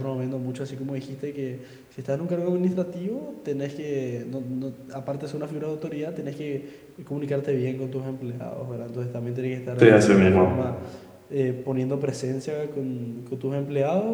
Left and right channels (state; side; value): identical; both; correlation 1.00